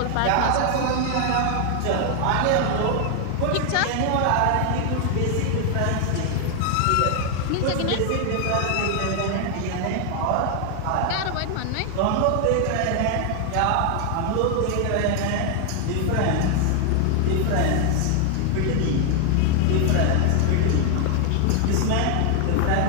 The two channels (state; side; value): different; both; correlation 0.00